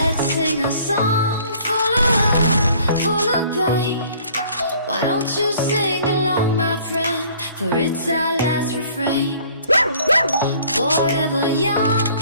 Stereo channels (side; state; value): both; inverted; correlation -0.55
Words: sing a song full of love, full of pain. Why don't you sing along, my friend? For it's our last refrain. Forever young,